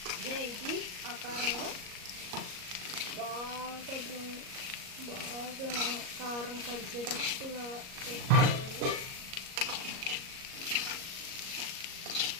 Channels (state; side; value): late; left; 38 ms